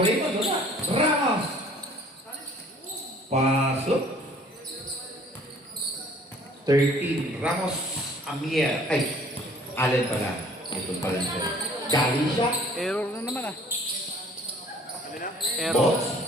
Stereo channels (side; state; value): both; normal; correlation 0.54